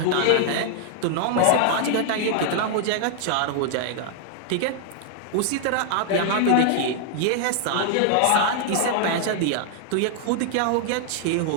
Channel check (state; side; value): different; both; correlation 0.00